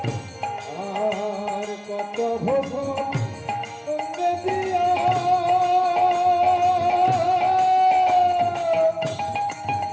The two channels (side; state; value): both; identical; correlation 1.00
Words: আর কত ভোজন সঙ্গে দিয়া